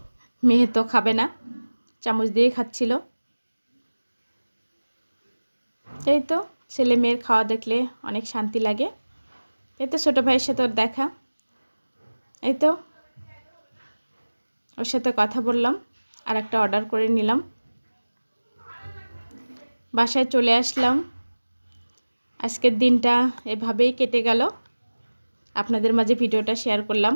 মেয়ে তো খাবে না, চামচ দিয়ে খাচ্ছিল। এই তো ছেলে মেয়ের খাওয়া দেখলে অনেক শান্তি লাগে। এই তো ছোটো ভাইয়ের সাথে ওর দেখা, এই তো ওর সাথে কথা বললাম, আর একটা অর্ডার করে নিলাম। বাসায় চলে আসলাম। আজকের দিনটা এভাবেই কেটে গেল। আপনাদের মাঝে ভিডিওটা শেয়ার করলাম,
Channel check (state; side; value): inverted; both; correlation -1.00